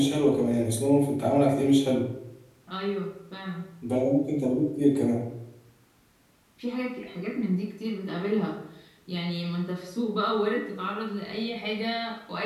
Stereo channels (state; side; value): identical; both; correlation 1.00